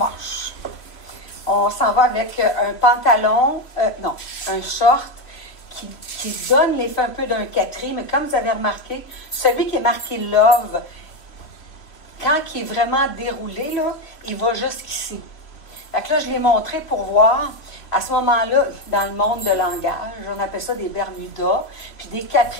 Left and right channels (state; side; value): late; right; 3.0 ms